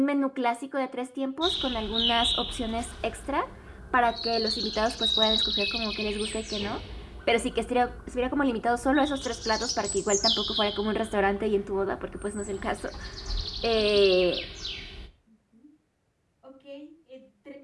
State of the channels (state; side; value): identical; both; correlation 1.00